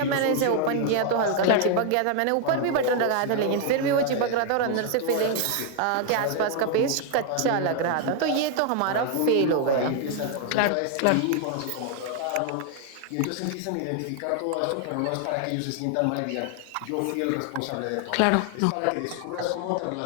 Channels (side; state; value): both; different; correlation 0.00